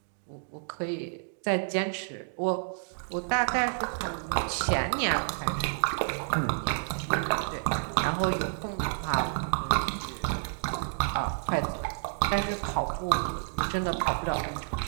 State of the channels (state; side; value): silent; left; digital silence